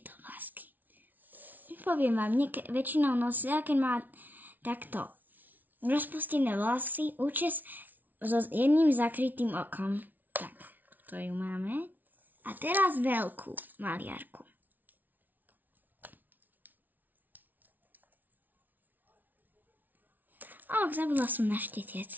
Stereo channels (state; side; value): late; left; 0.082 ms